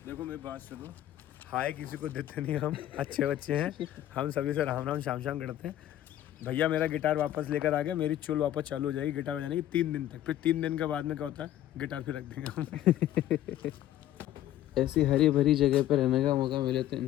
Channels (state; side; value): quieter; right; 12.8 dB